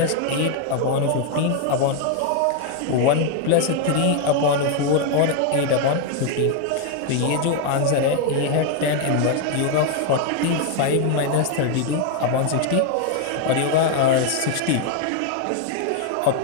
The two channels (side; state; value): both; different; correlation 0.01